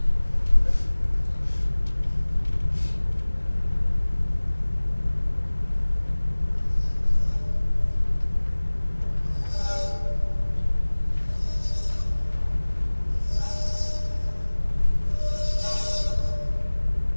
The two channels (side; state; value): both; inverted; correlation -1.00